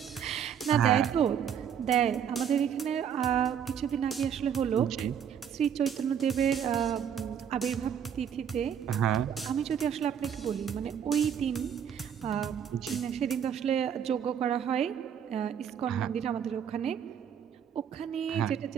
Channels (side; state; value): left; quieter; 8.4 dB